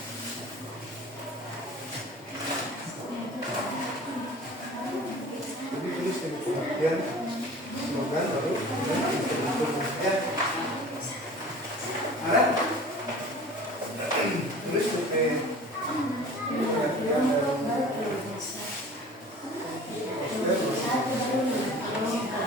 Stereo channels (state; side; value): normal; both; correlation 0.42